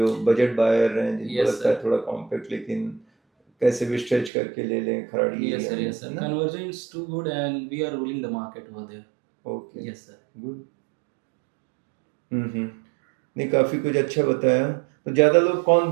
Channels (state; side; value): drops out; left; at 4.3 s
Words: बजट बायर हैं, जिनको Yes, लगता है sir. थोड़ा कॉम्पैक्ट लेकिन कैसे भी स्ट्रेच करके ले लें खराड़ी Yes, एरिया sir. में, Yes, sir. है ना? Conversion is too good, and we are ruling the market over there. Okay, Yes, sir. Good. नहीं काफ़ी कुछ अच्छा बताया। तो ज़्यादा लोग कौन